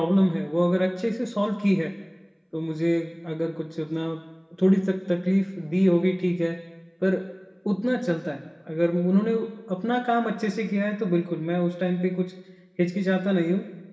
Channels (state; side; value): identical; both; correlation 1.00